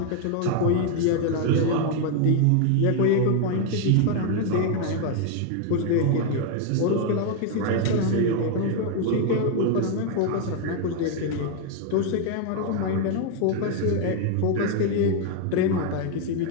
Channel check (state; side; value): different; both; correlation 0.00